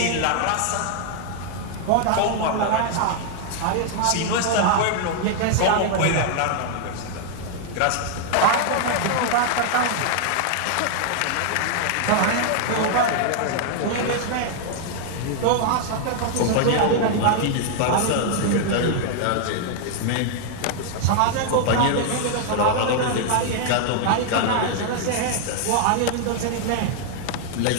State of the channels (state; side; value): different; both; correlation 0.00